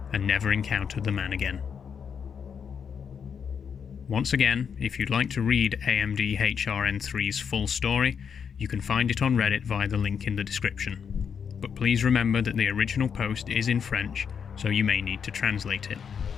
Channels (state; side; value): quieter; right; 7.0 dB